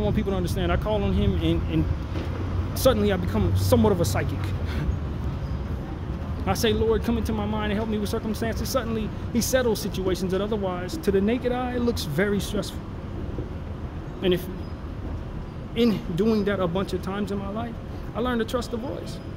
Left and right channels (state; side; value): identical; both; correlation 1.00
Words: people to understand. I call on Him, and suddenly I become somewhat of a psychic. I say, Lord, come into my mind and help me with circumstances. Suddenly, He settles situations that otherwise, to the naked eye, it looks very stressful. And if in doing that a bunch of times in my life, I learned to trust the voice.